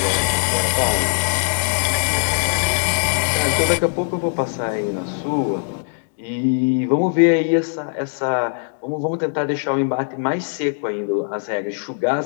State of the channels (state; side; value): silent; right; digital silence